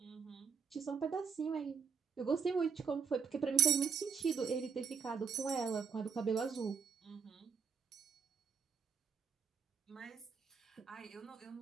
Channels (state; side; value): quieter; left; 6.5 dB